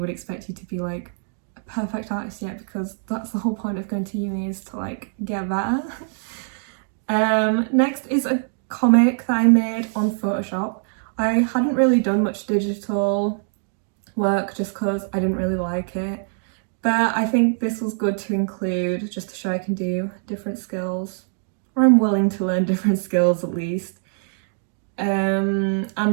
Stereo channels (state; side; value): silent; left; 63 dB below the other